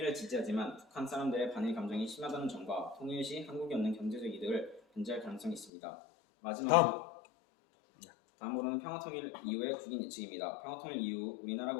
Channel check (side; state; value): right; drops out; at 5.7 s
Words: 지지하지만 북한 사람들의 반일 감정이 심하다는 점과 통일 시 한국이 얻는 경제적 이득을 견제할 가능성이 있습니다. 다음으로는 평화통일 이후의 국익 예측입니다. 평화통일 이후